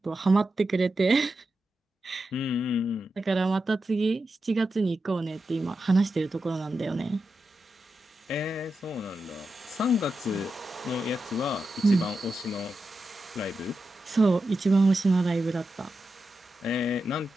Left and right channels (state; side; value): normal; both; correlation 0.89